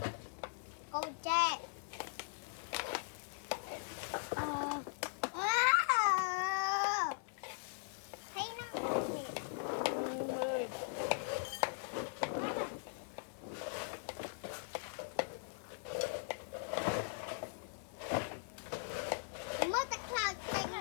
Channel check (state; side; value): silent; right; 51 dB below the other